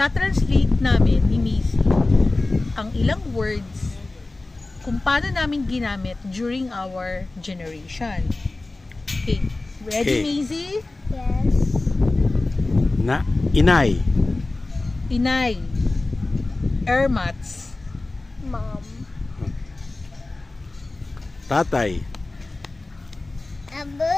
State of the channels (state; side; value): quieter; right; 3.1 dB